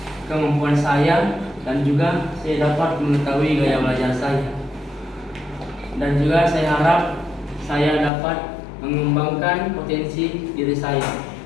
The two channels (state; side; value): drops out; right; at 8.1 s